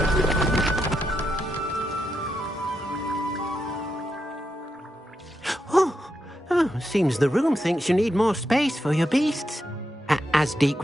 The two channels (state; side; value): normal; both; correlation 0.84